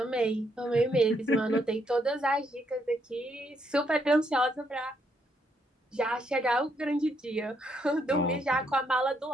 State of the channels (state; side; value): normal; both; correlation 0.75